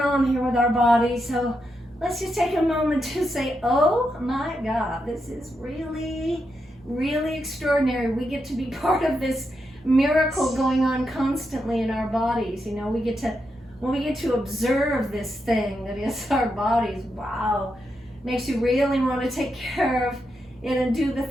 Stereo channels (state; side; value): normal; both; correlation 0.84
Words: here with our bodies. So let's just take a moment to say, oh my God, this is really, really extraordinary. We get to be part of this miracle going on constantly in our bodies. When we get to observe this thing that is our bodies, wow, makes you really want to take care of it and do the